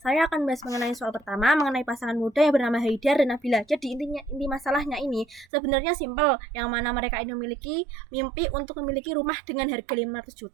Saya akan bahas mengenai soal pertama, mengenai pasangan muda yang bernama Haidar dan Nabila. Jadi inti masalahnya ini sebenarnya simpel, yang mana mereka ini memiliki mimpi untuk memiliki rumah dengan harga 500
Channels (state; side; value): drops out; left; at 5.5 s